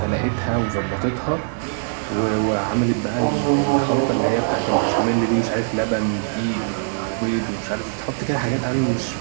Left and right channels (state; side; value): silent; left; digital silence